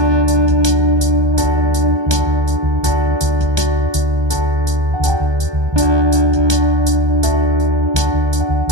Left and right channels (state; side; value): late; left; 1.2 ms